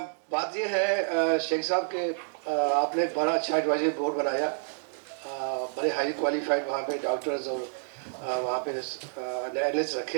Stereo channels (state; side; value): silent; left; digital silence